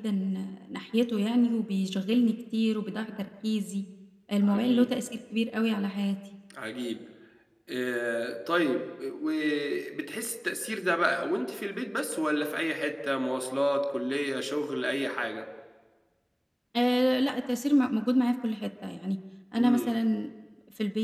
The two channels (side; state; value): both; identical; correlation 1.00